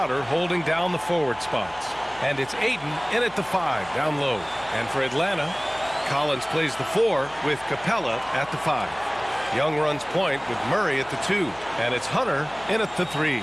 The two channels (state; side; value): noise; left; hum, 23 dB below the sound